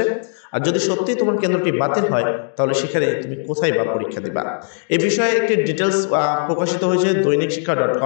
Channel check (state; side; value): silent; right; 67 dB below the other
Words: আর যদি সত্যি তোমার কেন্দ্রটি বাতিল হয় তাহলে সেখানে তুমি কোথায় বা পরীক্ষা দিবা, এই বিষয়ে একটি ডিটেলস প্রকাশিত হয়েছে দৈনিক